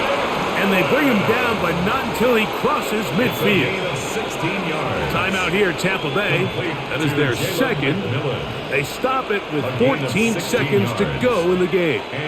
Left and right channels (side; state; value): both; identical; correlation 1.00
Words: And they bring him down, but not until he crosses midfield. 16 yards. Timeout here, Tampa Bay. That is their second. They stop it with 14 seconds to go in the game.